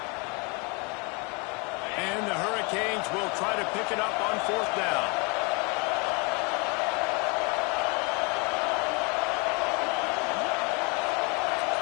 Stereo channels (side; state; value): right; quieter; 31.7 dB